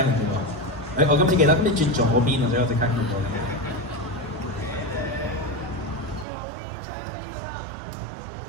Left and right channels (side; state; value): left; drops out; at 6.2 s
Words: 唔到？我今次記得，咁你轉左邊啊，所以我即刻見到。